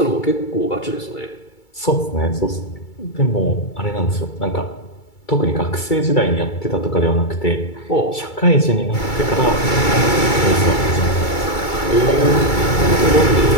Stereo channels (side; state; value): right; late; 2.3 ms